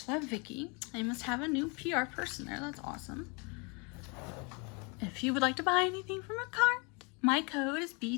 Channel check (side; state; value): right; quieter; 31.8 dB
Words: love, Vicky. I must have a new PR person there. That's awesome. If you would like to buy anything from Makartt, my code is